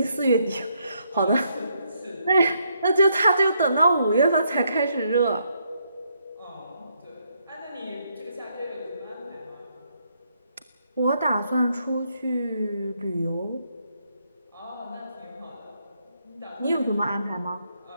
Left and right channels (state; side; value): inverted; both; correlation -0.75